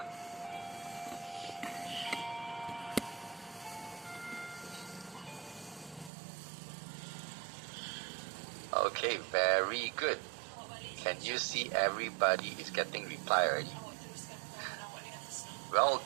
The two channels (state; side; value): drops out; left; at 6.1 s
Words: Okay, very good. Can you see everybody is getting reply already? Well